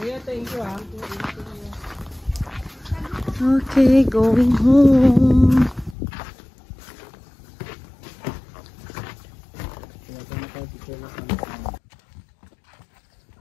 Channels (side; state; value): right; drops out; at 6.0 s